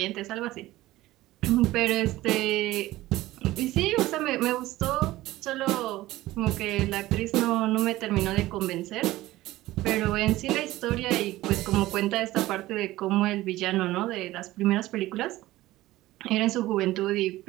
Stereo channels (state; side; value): quieter; left; 16.9 dB